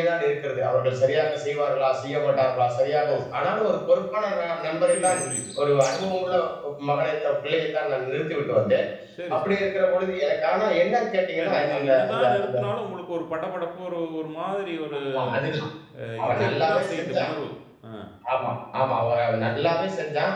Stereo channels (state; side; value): identical; both; correlation 1.00